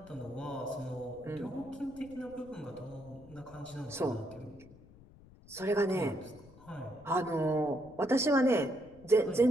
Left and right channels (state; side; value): noise; left; rumble, 22 dB below the sound